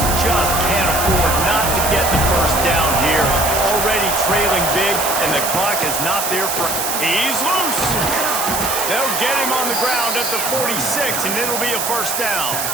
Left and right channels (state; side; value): noise; right; hiss, 2 dB below the sound